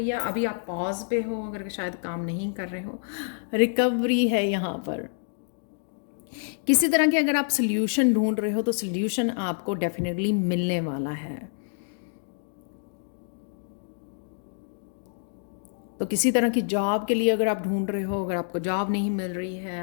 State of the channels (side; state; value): right; silent; digital silence